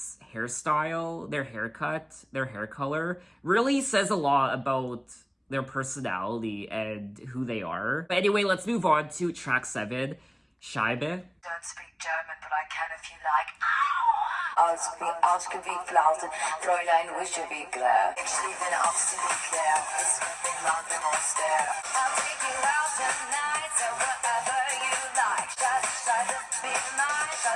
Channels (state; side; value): identical; both; correlation 1.00